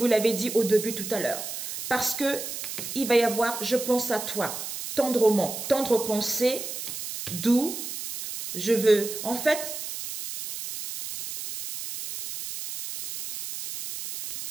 l'avais dit au début tout à l'heure. Parce que il va y avoir, je pense à toi, tendrement, tendre pensée, d'où je veux, en fait,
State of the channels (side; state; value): right; noise; hiss, 7 dB below the sound